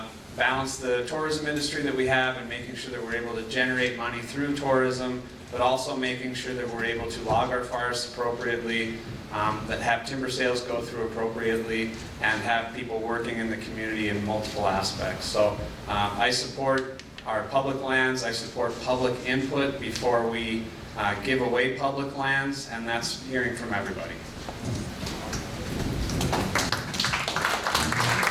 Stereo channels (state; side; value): identical; both; correlation 1.00